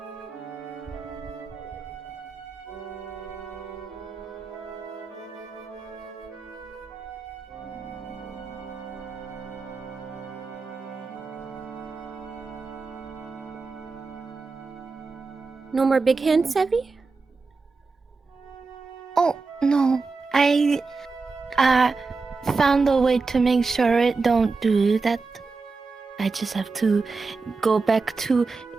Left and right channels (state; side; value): quieter; left; 4.2 dB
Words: No more big hands, Sevi? Oh, no. I found a way to make sure it don't do that. I just have to go back to